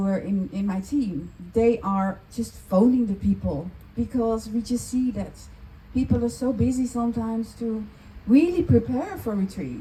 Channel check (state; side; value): identical; both; correlation 1.00